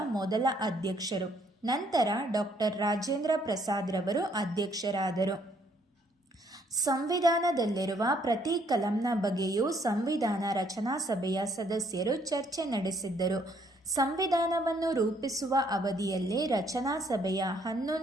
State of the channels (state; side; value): normal; both; correlation 0.67